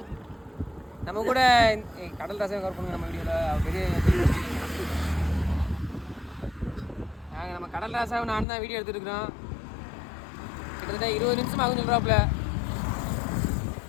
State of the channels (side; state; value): right; drops out; at 8.5 s